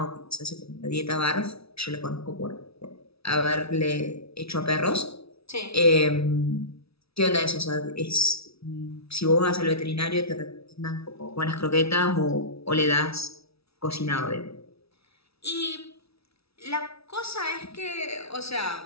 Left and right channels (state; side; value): late; right; 0.77 ms